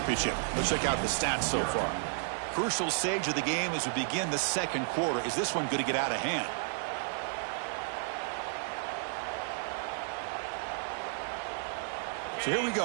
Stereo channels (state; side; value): silent; left; digital silence